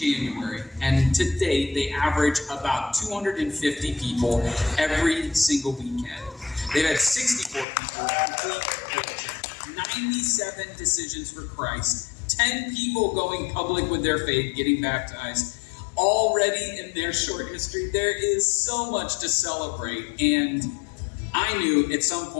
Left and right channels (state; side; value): drops out; right; at 7.7 s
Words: and to date, they average about 250 people every single weekend. They've had 64 people complete religion, 97 decisions for Christ, 10 people going public with their faith, getting baptized. Already in their short history, there is so much to celebrate. And I knew at some